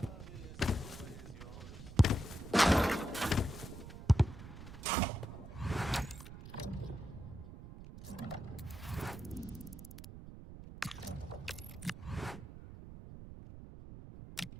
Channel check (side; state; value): right; noise; rumble, 13 dB below the sound